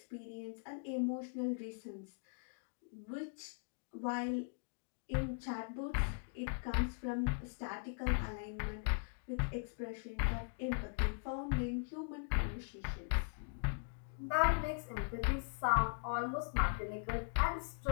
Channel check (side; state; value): right; silent; digital silence